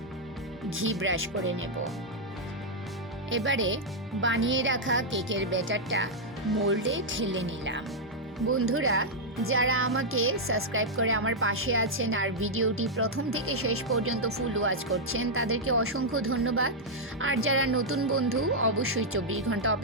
ঘি ব্রাশ করে নেব। এবারে বানিয়ে রাখা কেকের ব্যাটারটা মোল্ডে ঢেলে নিলাম। বন্ধুরা, যারা আমাকে সাবস্ক্রাইব করে আমার পাশে আছেন আর ভিডিওটি প্রথম থেকে শেষ পর্যন্ত ফুল ওয়াচ করছেন, তাদেরকে অসংখ্য ধন্যবাদ। আর যারা নতুন বন্ধু, অবশ্যই 24 ঘন্টা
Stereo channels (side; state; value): both; normal; correlation -0.04